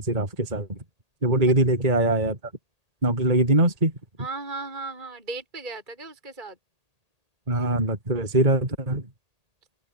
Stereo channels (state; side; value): late; left; 1.8 ms